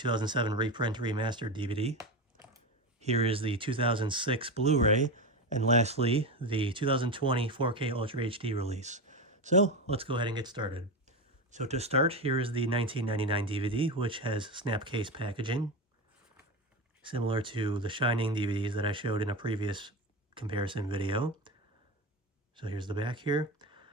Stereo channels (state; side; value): normal; both; correlation 0.19